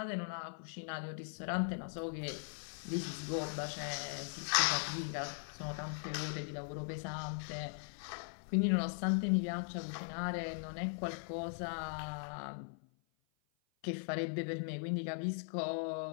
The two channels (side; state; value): right; silent; 51 dB below the other